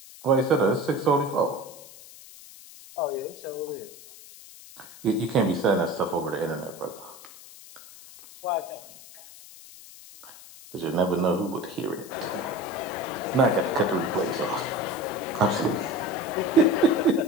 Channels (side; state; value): left; noise; hiss, 18 dB below the sound